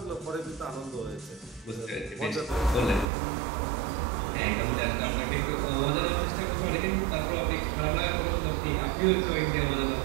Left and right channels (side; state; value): left; drops out; at 3.1 s